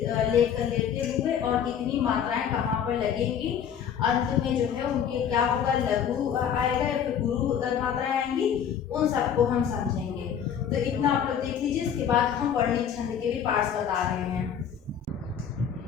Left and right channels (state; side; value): quieter; right; 8.3 dB